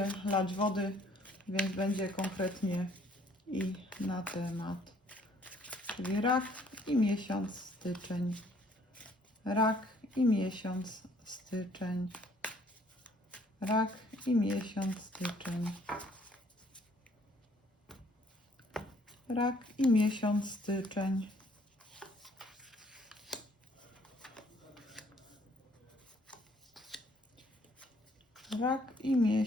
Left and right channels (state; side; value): normal; both; correlation 0.62